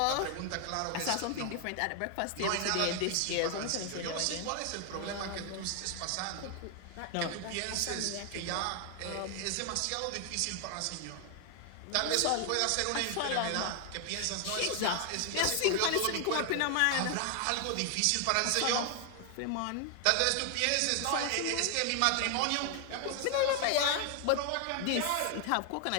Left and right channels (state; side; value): different; both; correlation 0.00